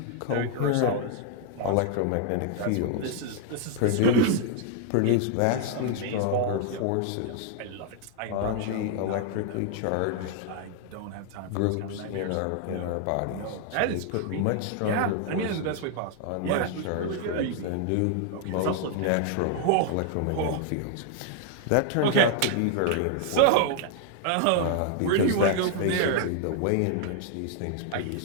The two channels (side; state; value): both; different; correlation 0.00